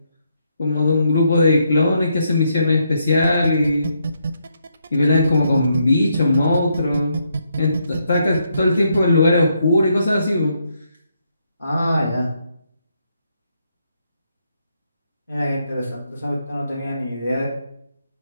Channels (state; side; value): inverted; both; correlation -0.77